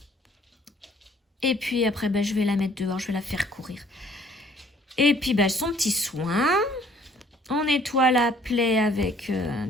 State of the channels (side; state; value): both; normal; correlation 0.58